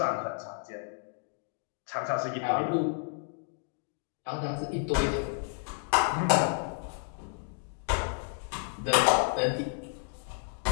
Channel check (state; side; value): silent; right; 57 dB below the other